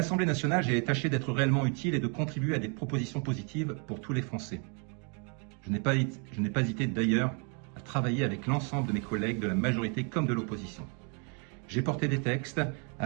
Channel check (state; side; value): quieter; left; 37.8 dB